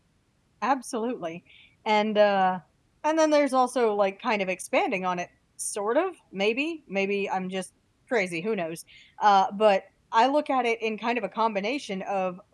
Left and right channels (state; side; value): identical; both; correlation 1.00